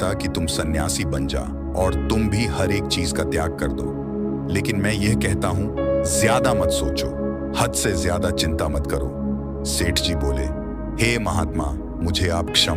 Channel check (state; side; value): identical; both; correlation 1.00